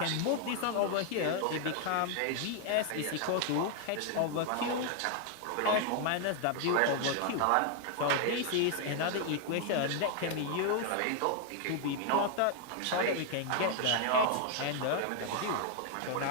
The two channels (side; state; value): both; different; correlation 0.00